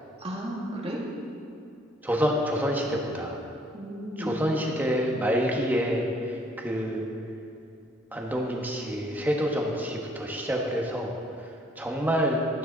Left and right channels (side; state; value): both; normal; correlation 0.63